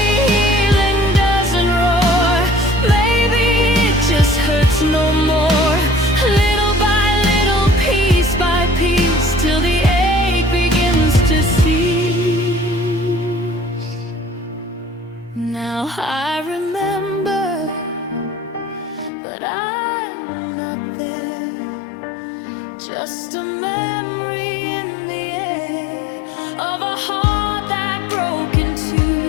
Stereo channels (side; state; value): right; drops out; at 19.1 s